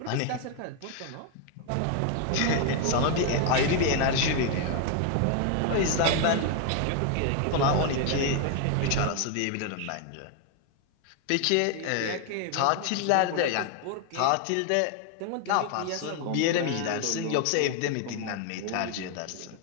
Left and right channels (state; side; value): different; both; correlation 0.00